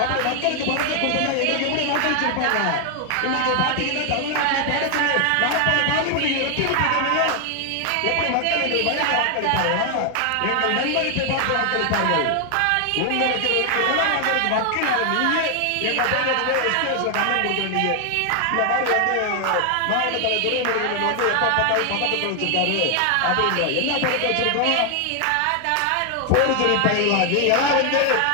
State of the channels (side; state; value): both; different; correlation 0.00